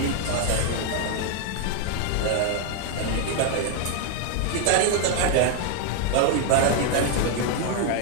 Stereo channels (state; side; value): different; both; correlation 0.00